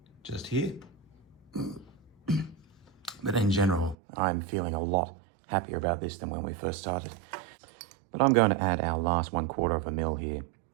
just here. But in general, I'm feeling a lot happier about this than when we first started. But I'm going to add our last 1/4 mil here,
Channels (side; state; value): left; drops out; at 4.0 s